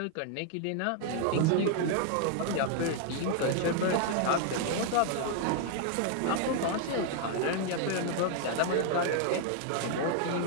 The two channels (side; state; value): both; different; correlation 0.00